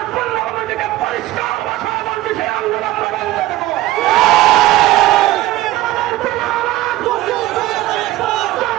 পূর্ণভূমির দিকে পরিষ্কার ভাষায় বলছে, সেই আন্দোলন আমরা বন্ধ দেব।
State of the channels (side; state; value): left; quieter; 16.4 dB